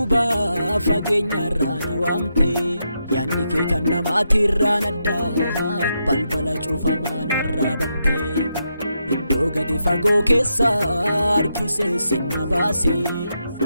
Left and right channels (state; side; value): inverted; both; correlation -0.83